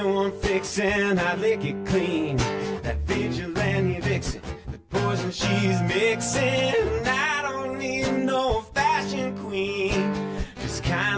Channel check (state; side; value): identical; both; correlation 1.00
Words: fix and I lick it clean. That vigilante vixen, the poison she's mixing. I don't need no fashion queen. Just